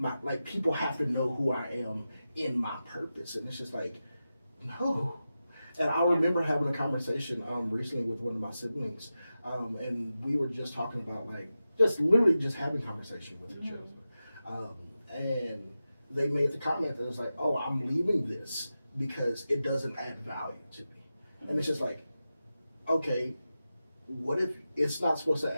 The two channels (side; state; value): both; inverted; correlation -0.92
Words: like, people have to know who I am in my purpose. And it's just like, no. And I remember having a conversation recently with one of my siblings, and we were just talking about, like, literally just having conversation with each other. And they made the comment that it's like, oh, I'm leaving this because it doesn't add value to me. And it's just like, okay, what if it's not supposed to